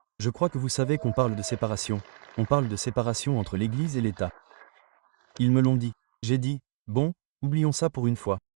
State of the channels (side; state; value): left; silent; digital silence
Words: Je crois que vous savez qu'on parle de séparation. On parle de séparation entre l'Église et l'État. Ils me l'ont dit. J'ai dit, bon, oublions ça pour une fois.